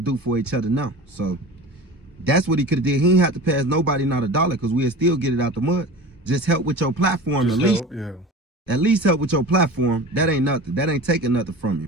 for each other now. So that's what he could have did. He ain't have to pass nobody not a dollar because we'll still get it out the mud. Just help with your platform at least. At least help with your platform. That ain't nothing. That ain't taking nothing from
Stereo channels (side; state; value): both; normal; correlation 0.35